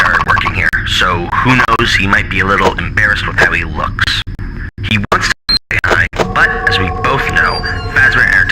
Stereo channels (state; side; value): identical; both; correlation 1.00